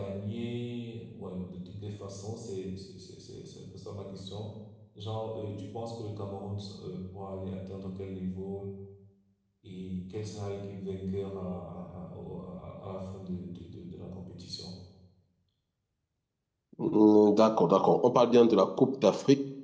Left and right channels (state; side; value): identical; both; correlation 1.00